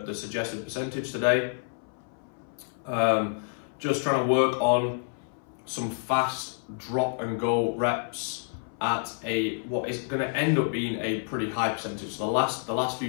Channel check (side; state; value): right; silent; 59 dB below the other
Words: suggested percentage today. Just trying to work on some fast drop and go reps at what is going to end up being a pretty high percentage. So the last few